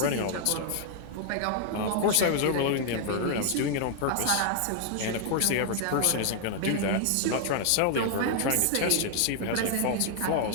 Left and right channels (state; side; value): different; both; correlation 0.00